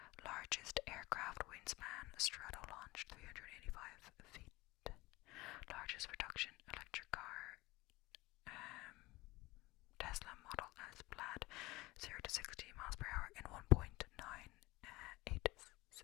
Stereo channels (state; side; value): quieter; right; 20.7 dB